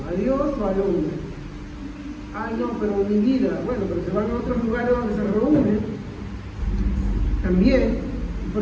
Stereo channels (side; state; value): both; identical; correlation 1.00